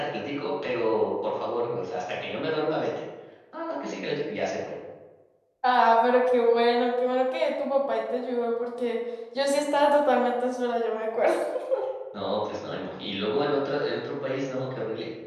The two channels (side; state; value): both; identical; correlation 1.00